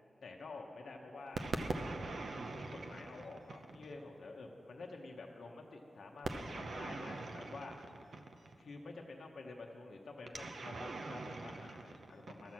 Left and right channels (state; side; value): normal; both; correlation 0.88